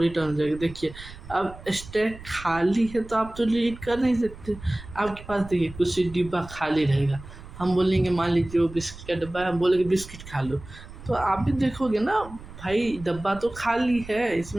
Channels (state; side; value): noise; right; rumble, 16 dB below the sound